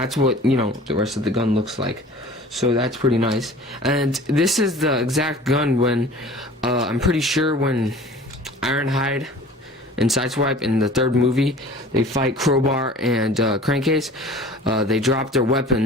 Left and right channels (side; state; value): both; normal; correlation 0.44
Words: what, you know, the rest of the gun looks like. So that's pretty nice. And this is the exact gun when, I'm pretty sure when Ironhide and Sideswipe in the third movie, they fight Crowbar and Crankcase. They drop their